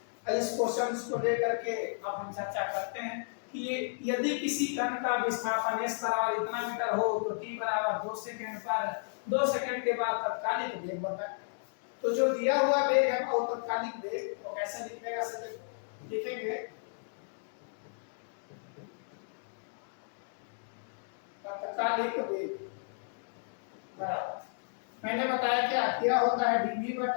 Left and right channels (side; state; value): right; silent; digital silence